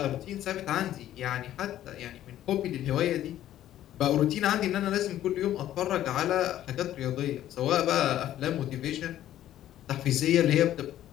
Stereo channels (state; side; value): quieter; right; 12.5 dB